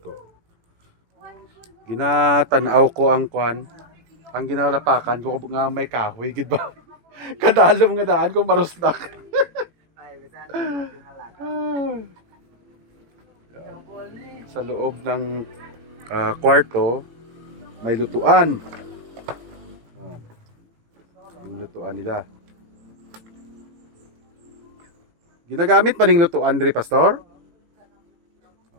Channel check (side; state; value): left; late; 18 ms